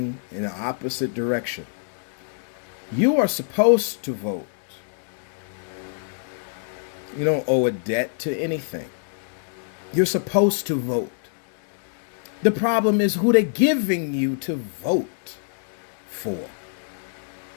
in the opposite direction. You are supposed to vote. You don't owe a debt to anything. You're supposed to vote. The problem is who they're giving you to vote for.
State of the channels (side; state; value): right; silent; digital silence